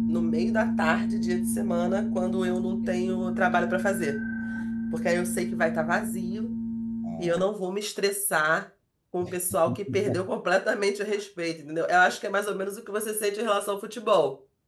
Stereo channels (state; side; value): identical; both; correlation 1.00